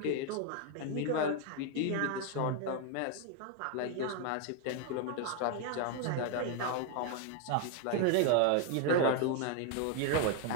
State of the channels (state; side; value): different; both; correlation 0.01